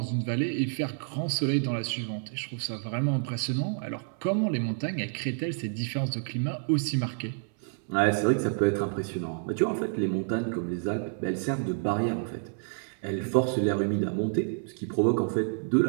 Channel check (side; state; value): left; silent; 59 dB below the other